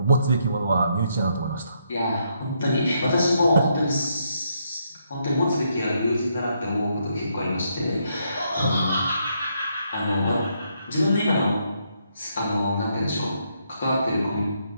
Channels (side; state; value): both; inverted; correlation -0.76